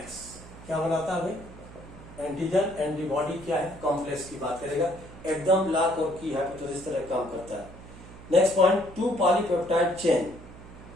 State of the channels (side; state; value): right; noise; hum, 17 dB below the sound